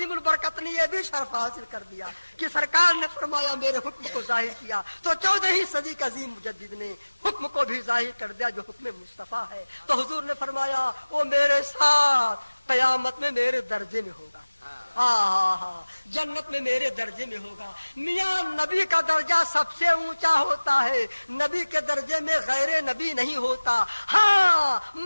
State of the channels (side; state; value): both; inverted; correlation -1.00